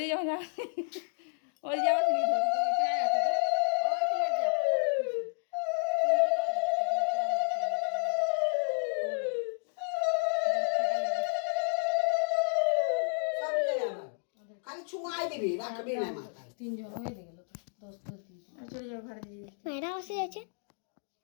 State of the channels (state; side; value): silent; right; 57 dB below the other